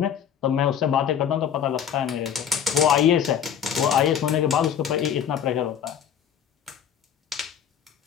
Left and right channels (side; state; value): right; quieter; 8.8 dB